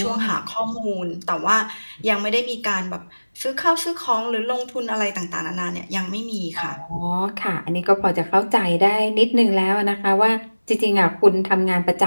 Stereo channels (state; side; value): inverted; both; correlation -1.00